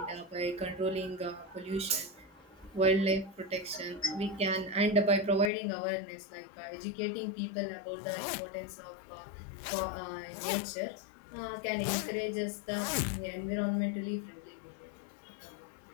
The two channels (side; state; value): right; drops out; at 5.5 s